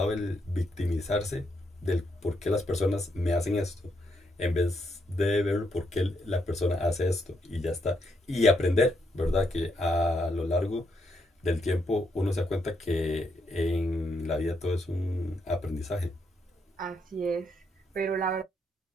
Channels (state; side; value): normal; both; correlation 0.78